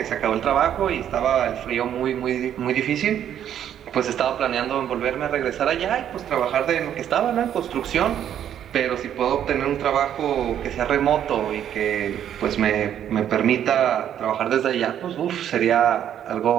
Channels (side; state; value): left; quieter; 10.0 dB